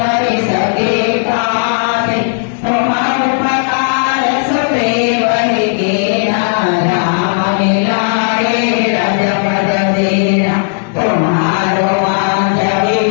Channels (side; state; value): right; silent; 67 dB below the other